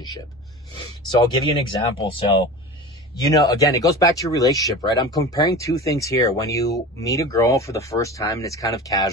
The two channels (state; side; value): normal; both; correlation 0.33